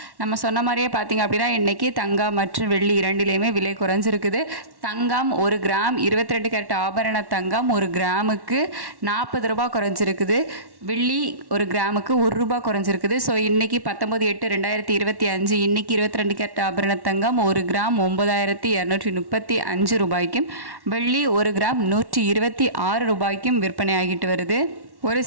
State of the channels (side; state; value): left; late; 1.1 ms